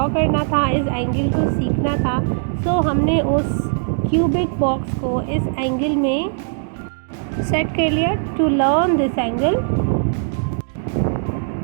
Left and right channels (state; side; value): silent; left; digital silence